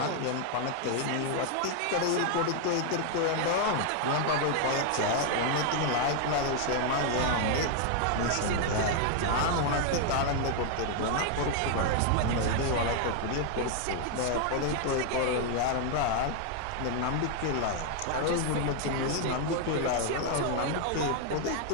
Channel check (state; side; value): different; both; correlation 0.00